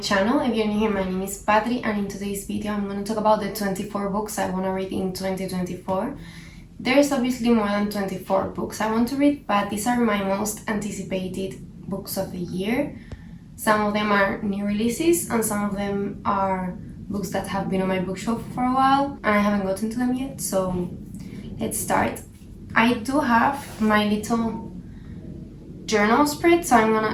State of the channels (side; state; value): both; identical; correlation 1.00